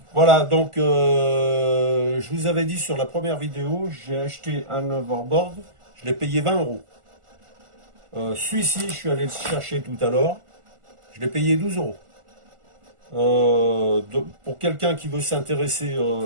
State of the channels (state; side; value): late; left; 1.4 ms